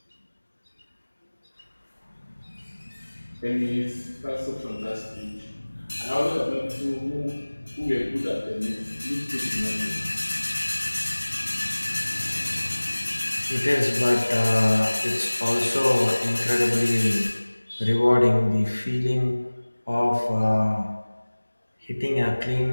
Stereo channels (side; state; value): both; inverted; correlation -1.00